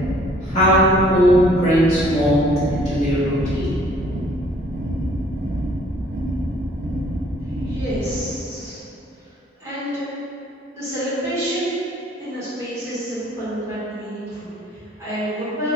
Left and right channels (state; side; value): normal; both; correlation 0.58